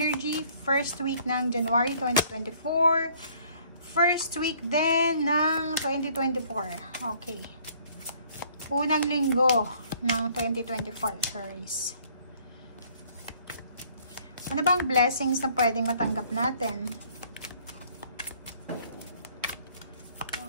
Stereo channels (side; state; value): both; inverted; correlation -0.60